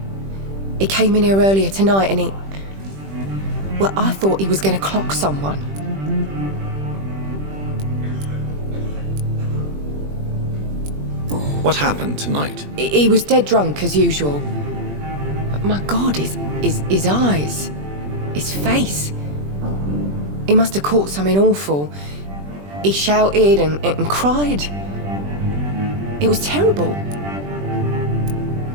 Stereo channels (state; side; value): late; left; 20 ms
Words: He came in here earlier tonight and well, I thought he was going to clock someone. What happened tonight? He was dead drunk as usual. But my God, his eyes, his face. He must have caught something awful. He shouted and cried. It was terrible.